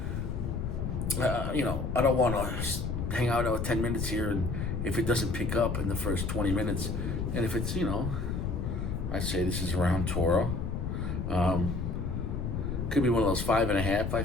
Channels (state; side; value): noise; left; rumble, 2 dB below the sound